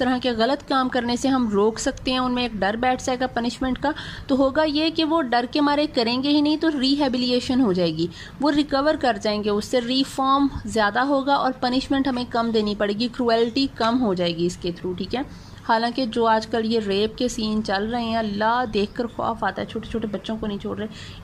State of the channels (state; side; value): identical; both; correlation 1.00